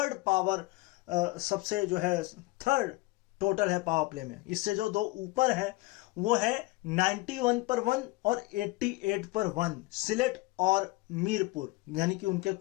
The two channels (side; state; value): right; quieter; 21.7 dB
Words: पावर, सबसे जो है थर्ड टोटल है पावर प्ले में। इससे जो दो ऊपर है वो है 91 पर 1 और 88 पर 1, सिलेट और मीरपुर, यानी कि उनके